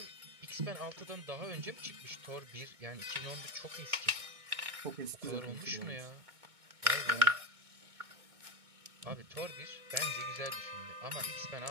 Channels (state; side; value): late; left; 2.2 ms